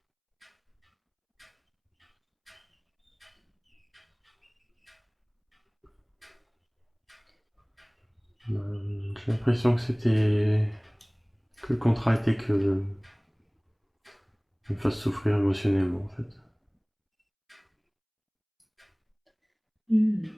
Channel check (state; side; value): identical; both; correlation 1.00